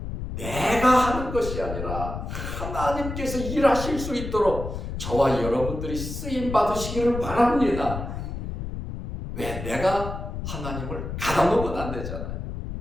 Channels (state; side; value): noise; left; rumble, 6 dB below the sound